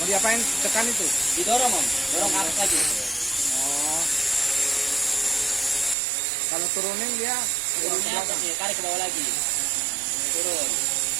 diapain tekan itu? Didorong Om, dorong ke atas lagi. Oh. Kalau turunin dia Turunnya atas nih, tarik ke bawah lagi. Turun.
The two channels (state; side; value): drops out; left; at 6.0 s